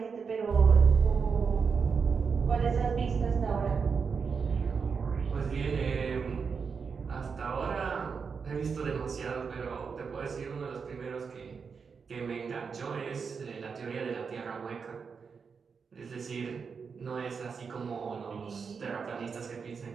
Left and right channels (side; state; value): left; quieter; 5.7 dB